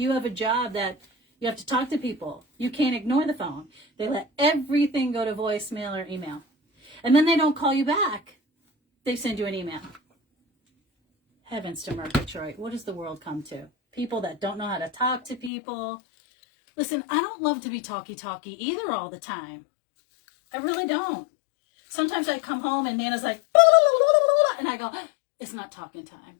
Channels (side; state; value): right; drops out; at 15.5 s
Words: have a job that you have to talk to people. You can't ignore the phone. They let everything go to voicemail or email. And then they don't call you back. They send you an email. Heavens to Murgatroyd. What does the world come to? People that don't know how to talk to people. Listen, I don't love to be talky either all the time. I really don't. Sometimes I come home and Nana's like, and I go, it's not talking time.